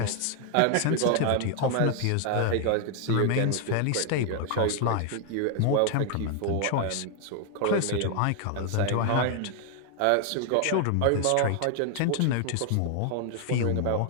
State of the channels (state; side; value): different; both; correlation 0.00